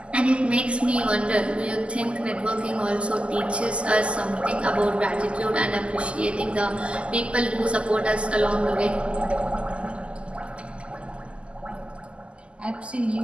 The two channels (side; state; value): left; late; 0.054 ms